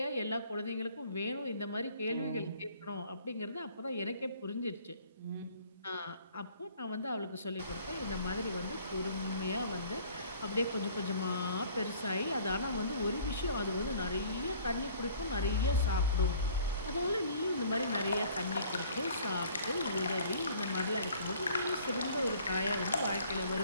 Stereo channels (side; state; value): both; inverted; correlation -0.54